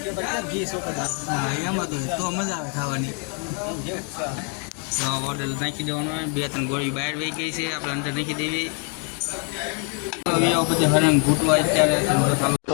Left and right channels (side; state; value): right; quieter; 38.9 dB